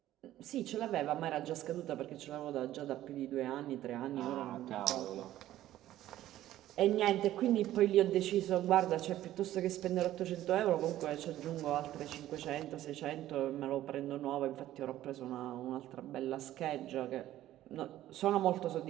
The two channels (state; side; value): quieter; left; 13.7 dB